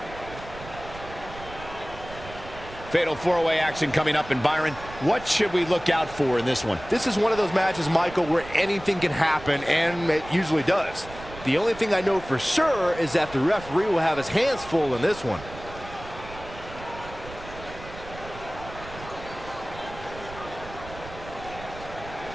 Fatal four-way action coming up. And Byron, what should we look out for in this one? This is one of those matches, Michael, where anything can happen, and it usually does. The only thing I know for sure is that the referee will have his hands full in this one.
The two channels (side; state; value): right; noise; rumble, 15 dB below the sound